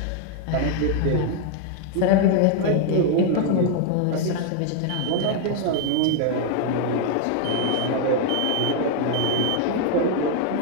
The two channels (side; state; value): both; different; correlation 0.00